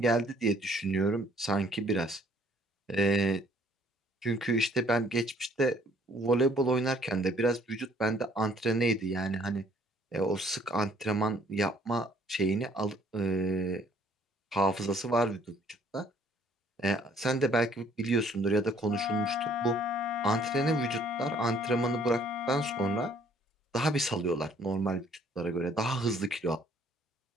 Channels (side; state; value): both; normal; correlation 0.61